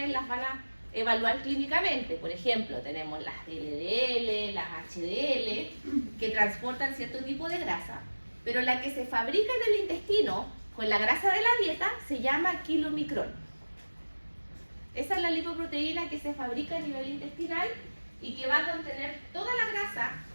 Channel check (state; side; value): inverted; both; correlation -1.00